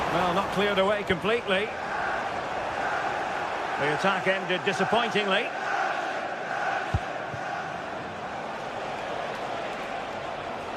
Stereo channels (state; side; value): identical; both; correlation 1.00